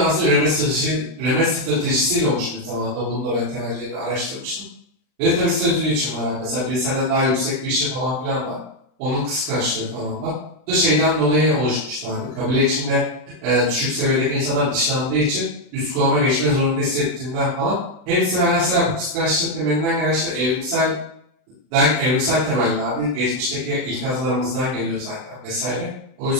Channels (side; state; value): left; late; 39 ms